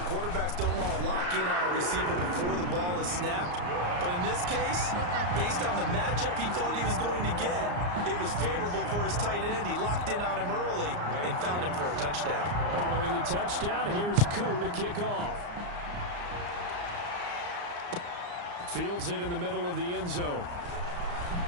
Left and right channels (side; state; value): left; late; 34 ms